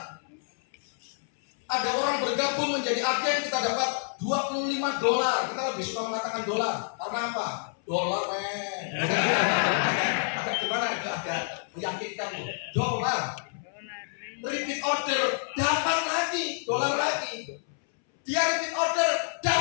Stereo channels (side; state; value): right; silent; 59 dB below the other